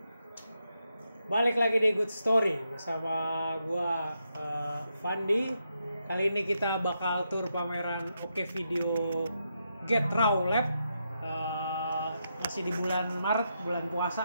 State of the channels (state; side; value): inverted; both; correlation -0.83